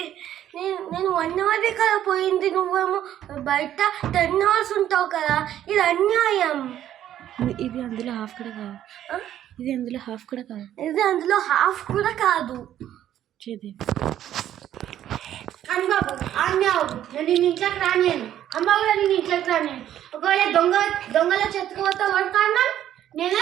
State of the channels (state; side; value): quieter; left; 11.5 dB